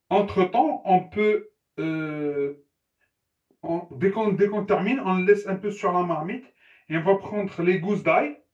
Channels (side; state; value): both; identical; correlation 1.00